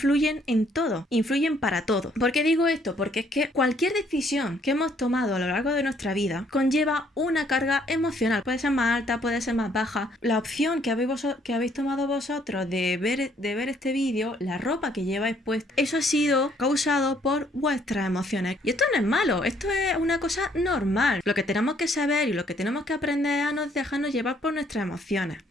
en todo, influyen para todo. ¿Por qué digo esto? Porque es que cualquier decisión que hemos tomado a lo largo de nuestra vida conlleva una carga emocional. Puede ser más alta, puede ser más baja. La opción que habéis tomado vosotros de ver este vídeo, la ropa que lleváis puesta, eso ha sido causado por vuestras emociones. Y esto no es malo, esto es una cosa normal. Lo que tenemos que saber y lo que tenemos que aprender es a no dejarnos llevar por nuestras emociones.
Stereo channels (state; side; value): normal; both; correlation 0.65